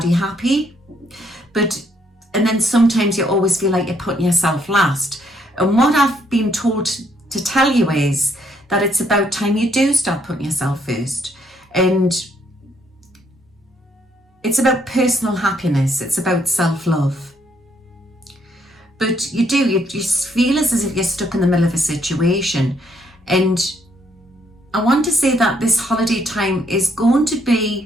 happy. And then sometimes you always feel like you're putting yourself last. And what I've been told to tell you is that it's about time you do start putting yourself first. And it's about personal happiness. It's about self-love. But you just feel as if you're stuck in the middle of a situation. And I want to say that this holiday time is going to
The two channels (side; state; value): both; normal; correlation 0.71